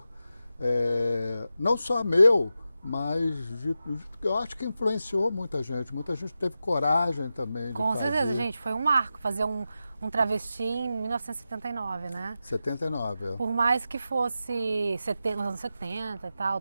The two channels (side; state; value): both; inverted; correlation -0.91